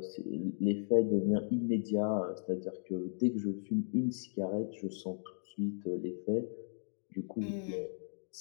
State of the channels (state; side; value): silent; right; digital silence